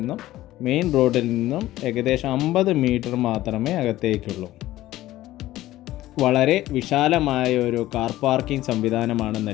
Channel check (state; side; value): quieter; right; 15.5 dB